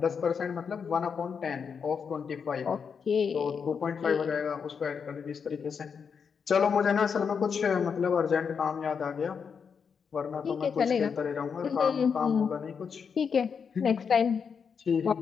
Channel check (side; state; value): right; quieter; 6.4 dB